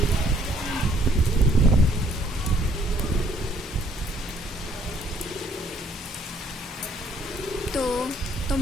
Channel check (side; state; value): both; normal; correlation 0.63